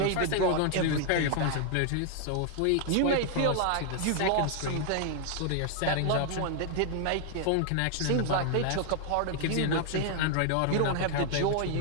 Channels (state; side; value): different; both; correlation 0.00